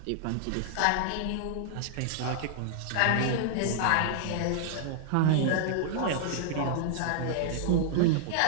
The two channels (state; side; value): different; both; correlation -0.01